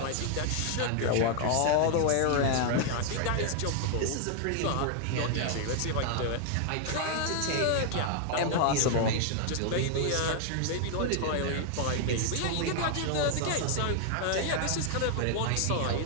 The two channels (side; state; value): both; different; correlation 0.00